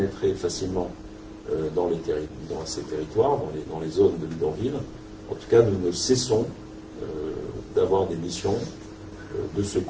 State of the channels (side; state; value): both; identical; correlation 1.00